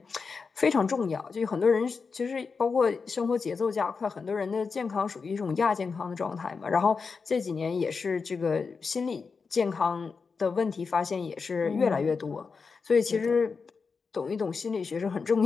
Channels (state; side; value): quieter; right; 5.0 dB